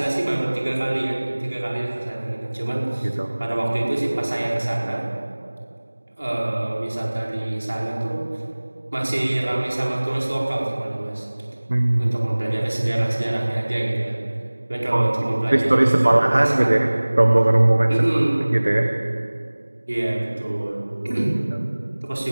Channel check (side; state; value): both; inverted; correlation -1.00